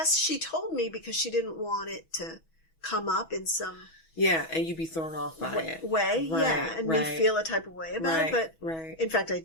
she told me because she didn't want it to come up in some... Yeah, and you'd be thrown off by it. And me feel a type of way about it. But in fact, I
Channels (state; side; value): late; right; 6.2 ms